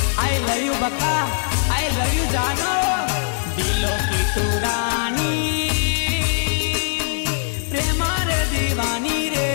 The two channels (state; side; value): silent; right; digital silence